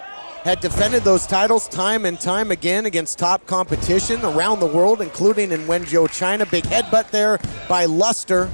had defended those titles time and time again against top competition around the world, including in Wenzhou, China. Big headbutt there by Luster.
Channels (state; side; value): inverted; both; correlation -1.00